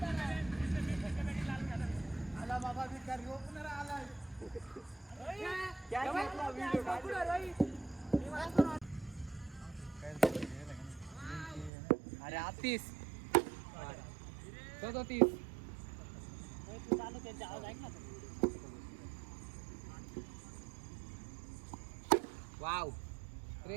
अरे 30 30 वाव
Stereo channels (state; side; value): drops out; left; at 11.7 s